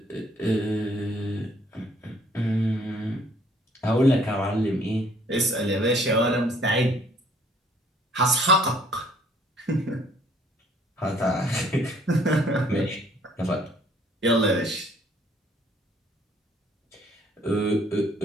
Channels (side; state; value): both; normal; correlation 0.60